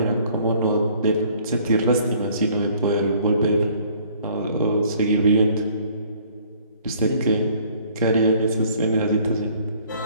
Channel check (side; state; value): both; inverted; correlation -0.58